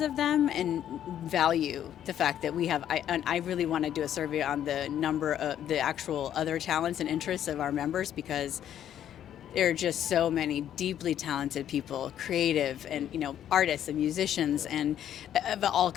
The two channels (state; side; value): quieter; right; 10.5 dB